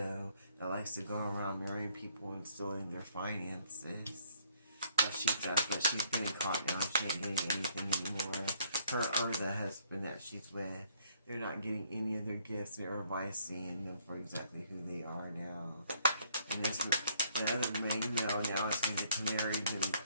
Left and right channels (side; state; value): both; inverted; correlation -0.66